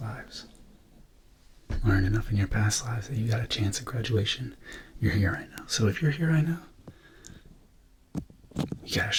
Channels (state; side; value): identical; both; correlation 1.00